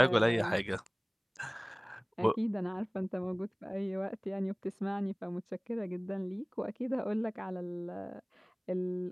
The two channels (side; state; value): both; identical; correlation 1.00